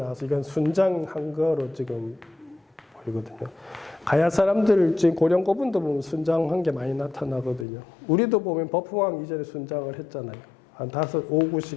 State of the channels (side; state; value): right; drops out; at 7.7 s